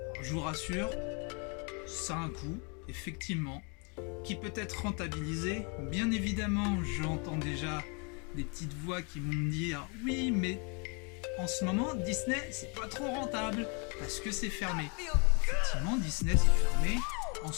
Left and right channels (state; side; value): quieter; right; 34.6 dB